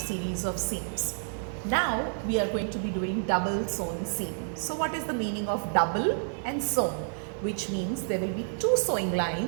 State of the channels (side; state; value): left; silent; 58 dB below the other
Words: of seams. Now we are going to be doing double sewn seam. So what is the meaning of double and sewn? Which means there will be two sewing